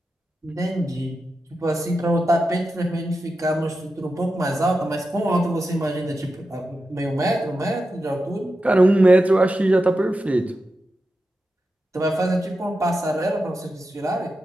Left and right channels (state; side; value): normal; both; correlation 0.90